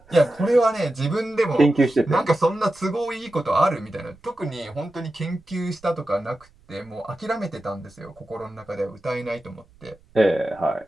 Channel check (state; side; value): noise; right; rumble, 29 dB below the sound